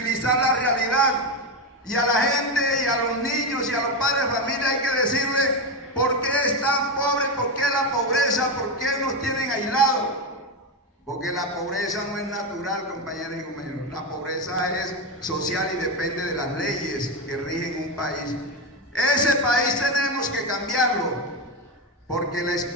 la realidad, y a la gente y a los niños y a los padres de familia hay que decirle por qué están pobres, por qué la pobreza, por qué nos tienen aislados. Porque la pobreza no es natural, compañeras y compañeros. La pobreza es social y depende de las leyes que rigen un país. Ese país tenemos que cambiarlo, porque la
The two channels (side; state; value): both; normal; correlation 0.12